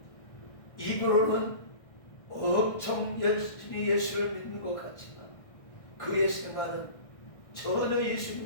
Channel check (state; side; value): late; right; 1.6 ms